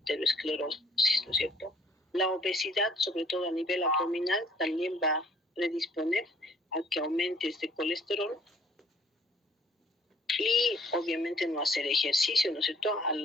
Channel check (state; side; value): normal; both; correlation 0.60